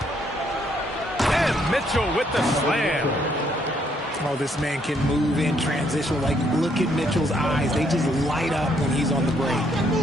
Mitchell with the slam. Oh, this man can move in transition. Like, look at Mitchell's eyes. They just light up when he's on the break.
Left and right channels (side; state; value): both; normal; correlation 0.70